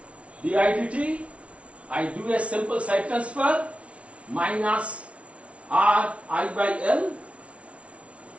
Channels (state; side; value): late; left; 0.062 ms